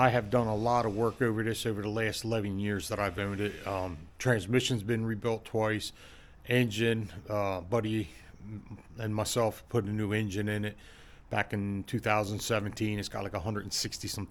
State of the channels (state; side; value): identical; both; correlation 1.00